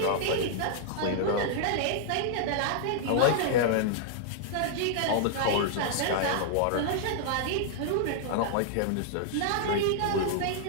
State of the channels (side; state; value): both; different; correlation -0.01